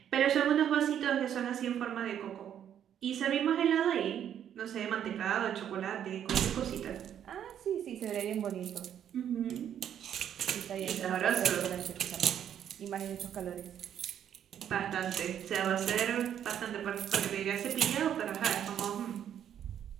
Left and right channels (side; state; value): left; quieter; 9.6 dB